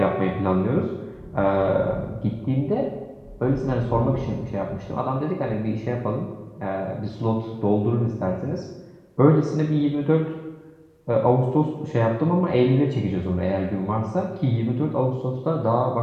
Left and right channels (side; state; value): both; identical; correlation 1.00